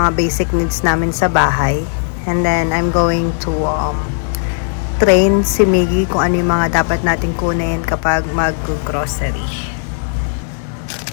basic needs namin sa bahay. And then I'm going to train si Miggy kung ano yung mga dapat natin kunin kapag mag-grocery.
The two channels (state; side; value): silent; right; digital silence